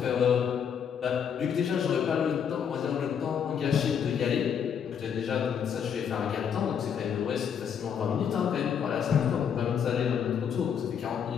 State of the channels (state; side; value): quieter; right; 7.7 dB